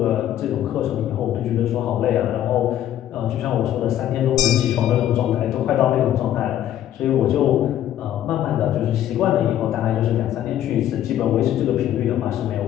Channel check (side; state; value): right; quieter; 11.7 dB